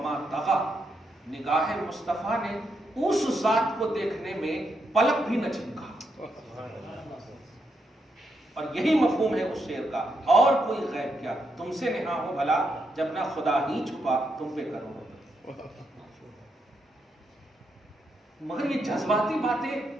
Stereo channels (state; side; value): normal; both; correlation 0.81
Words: طغى. نگاہ مصطفیٰ نے اس ذات کو دیکھنے میں پلک بھی نہ جھپکا. اور یہی مفہوم ہے اس شعر کا. اور کوئی غیب کیا تم سے نہا ہو بھلا، جب نہ خدا ہی چھپا تم پہ کرو. مگر یہ جذباتی باتیں